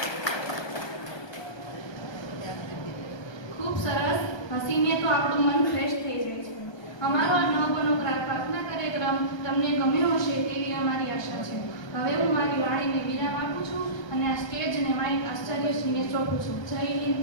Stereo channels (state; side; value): late; right; 1.2 ms